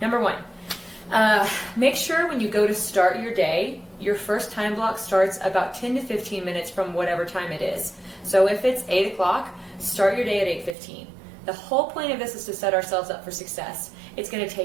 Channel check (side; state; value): left; drops out; at 10.8 s